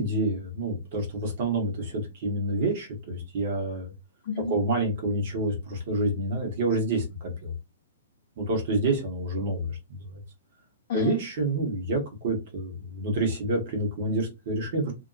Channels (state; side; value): inverted; both; correlation -0.36